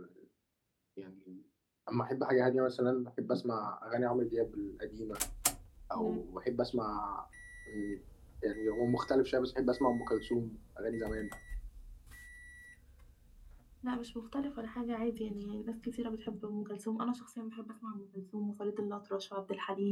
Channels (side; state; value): both; identical; correlation 1.00